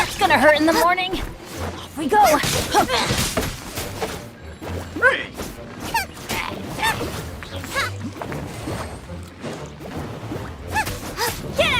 gonna hurt in the morning. Off we go. Get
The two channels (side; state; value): both; identical; correlation 1.00